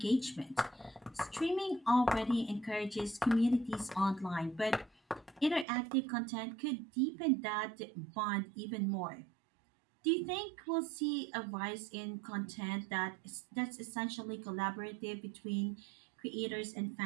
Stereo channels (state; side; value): drops out; left; at 5.7 s